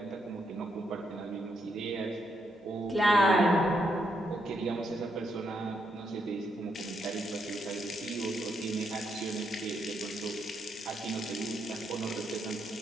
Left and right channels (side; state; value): both; normal; correlation 0.78